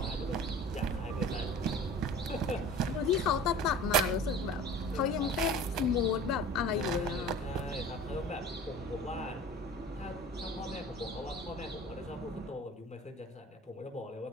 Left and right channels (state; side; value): normal; both; correlation 0.41